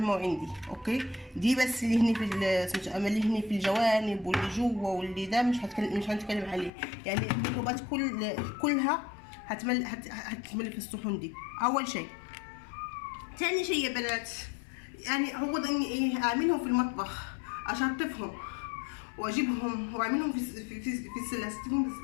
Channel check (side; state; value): right; drops out; at 6.7 s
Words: دي. اوكي، دي بس اللي هني في اما اللي هني في الجوانب واللي جوا واللي ده مش هنتكلم عليه. يعني الميكروبات كلها هتمل في الصحون دي اول شيء. ثاني شيء يا بنات، يعني هو اني ايه اعملهم في المطبخ، اشطفهم واجيبهم واعملهم في السله، استفهم في